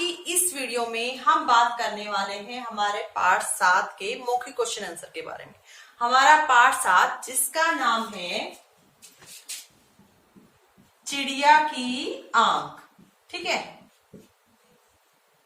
इस वीडियो में हम बात करने वाले हैं हमारे पार्ट 7 के मौखिक क्वेश्चन आंसर के बारे में। हमारा पार्ट 7 जिसका नाम है चिड़िया की आंख, ठीक है।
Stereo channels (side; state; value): both; identical; correlation 1.00